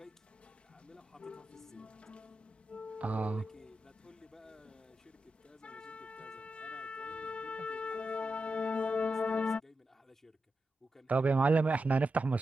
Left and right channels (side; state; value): both; normal; correlation 0.89